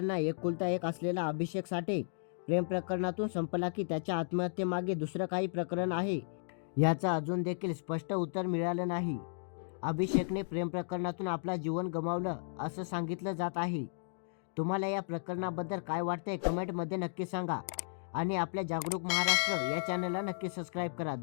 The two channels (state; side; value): silent; right; digital silence